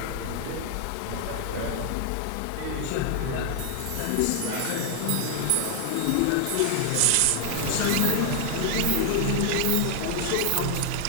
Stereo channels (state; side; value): different; both; correlation 0.00